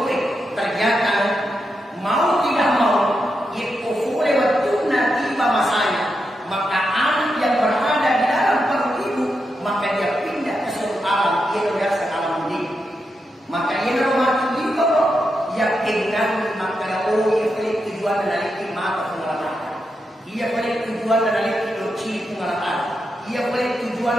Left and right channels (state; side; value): normal; both; correlation 0.86